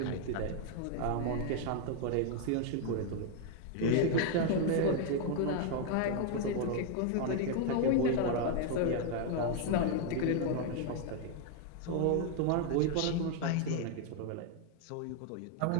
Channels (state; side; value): different; both; correlation 0.01